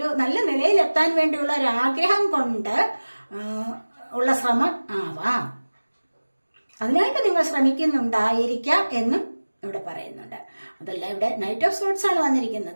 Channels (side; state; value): both; inverted; correlation -1.00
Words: നല്ല നിലയിലെത്താൻ വേണ്ടിയുള്ള ഒരു ആഗ്രഹം കൊണ്ട് ഉള്ള ശ്രമം ആവാം. അതിനായിട്ട് നിങ്ങൾ ശ്രമിക്കുന്നുണ്ടായിരിക്കാം എന്നും ഇവിടെ പറയുന്നുണ്ട്. അതല്ല, ഇവിടെ നൈറ്റ് ഓഫ് സോഡ്സ് ആണ്